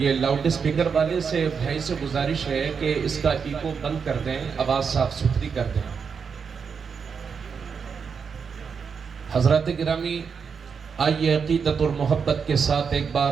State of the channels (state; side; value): quieter; left; 6.1 dB